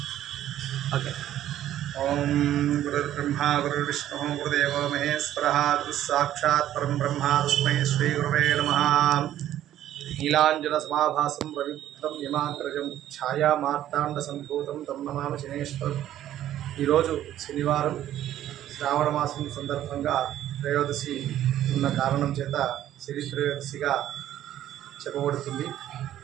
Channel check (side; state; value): left; quieter; 12.2 dB